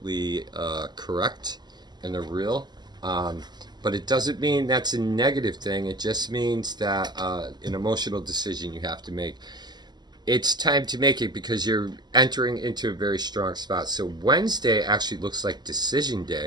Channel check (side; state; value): left; late; 0.21 ms